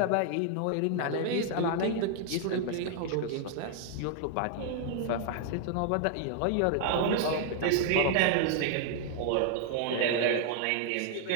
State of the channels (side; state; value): both; different; correlation 0.00